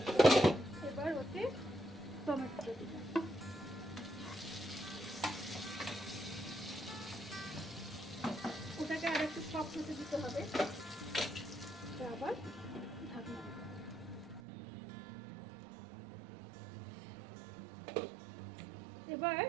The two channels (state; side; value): drops out; left; at 14.4 s